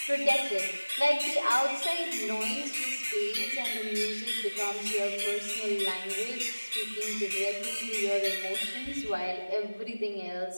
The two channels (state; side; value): inverted; both; correlation -1.00